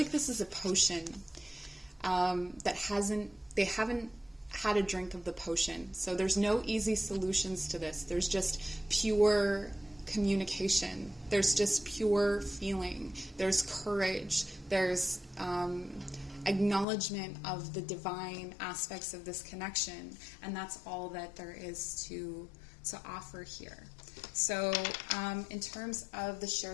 this is a potion they haven't had a drink of the potion. So there's no easy solutions to this. There's just pure communication. There's just pure feeling. There's courage. There's acknowledgement of the divine aspects of this connection. And that's all that there is to offer here. So in terms of the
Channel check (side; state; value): right; drops out; at 16.9 s